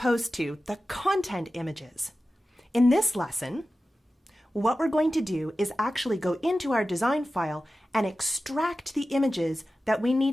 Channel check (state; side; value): normal; both; correlation 0.94